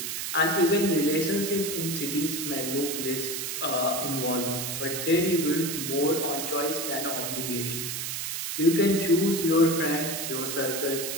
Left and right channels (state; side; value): noise; right; hiss, 3 dB below the sound